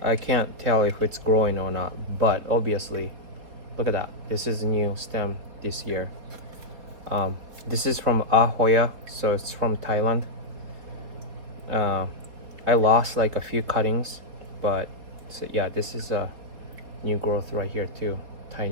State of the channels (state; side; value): late; left; 4.1 ms